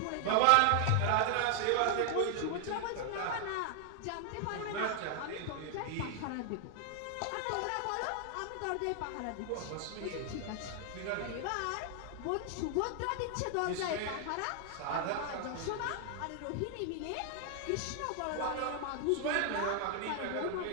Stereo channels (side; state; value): both; different; correlation 0.00